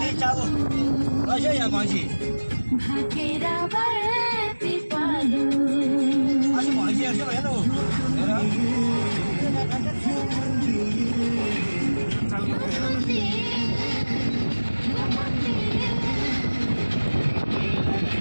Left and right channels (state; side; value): inverted; both; correlation -1.00